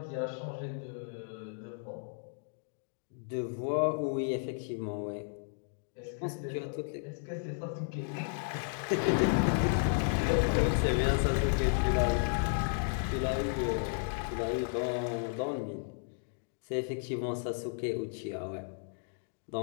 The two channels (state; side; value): silent; right; digital silence